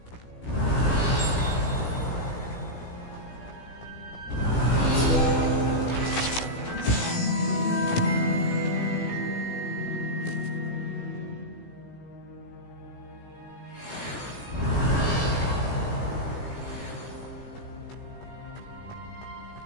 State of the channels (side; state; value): right; late; 17 ms